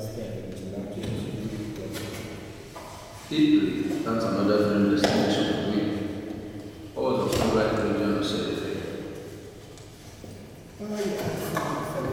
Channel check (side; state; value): both; identical; correlation 1.00